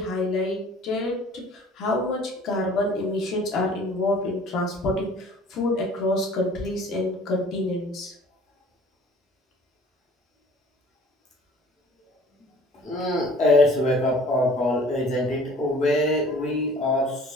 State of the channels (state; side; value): normal; both; correlation 0.50